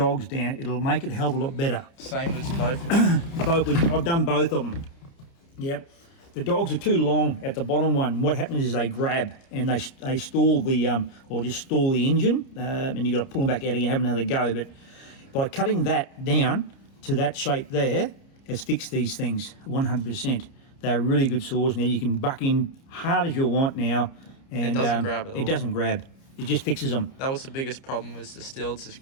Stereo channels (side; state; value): right; late; 30 ms